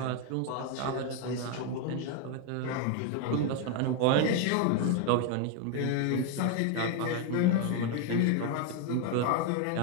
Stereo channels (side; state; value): both; different; correlation 0.01